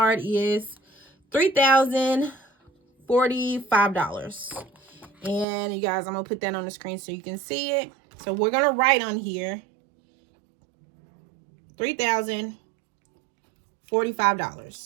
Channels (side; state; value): left; drops out; at 5.5 s